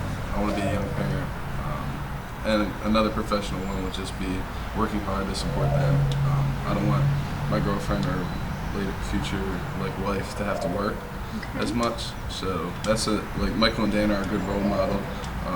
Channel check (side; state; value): both; identical; correlation 1.00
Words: I want to be a young parent. And another professional one would just be working hard to support them. I don't want my girlfriend or later future wife to have to work as much. So that's Michael and Dana are a good role model.